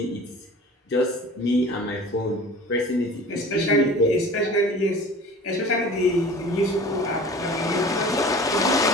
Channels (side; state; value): both; normal; correlation 0.41